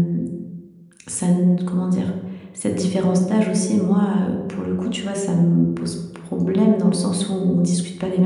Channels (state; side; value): identical; both; correlation 1.00